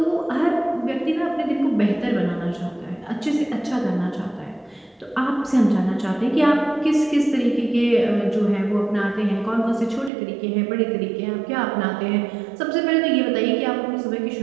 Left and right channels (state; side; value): drops out; left; at 10.1 s